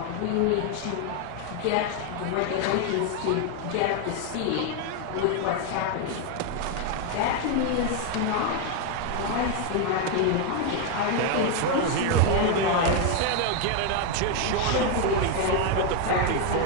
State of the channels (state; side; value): different; both; correlation 0.01